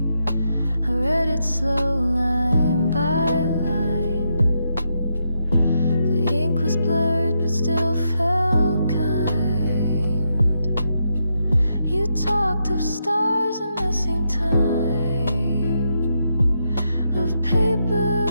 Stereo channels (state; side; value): inverted; both; correlation -0.82